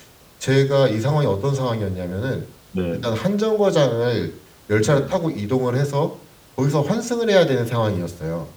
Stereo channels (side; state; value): both; identical; correlation 1.00